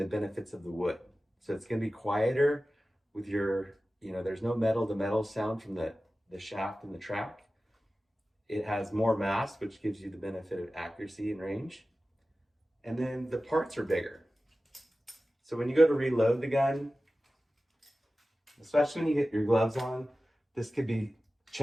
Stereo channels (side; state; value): both; normal; correlation 0.95